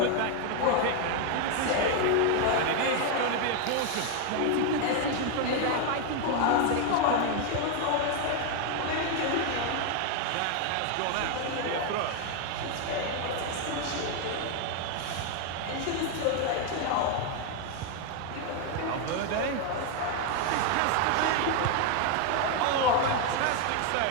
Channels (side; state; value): both; different; correlation 0.01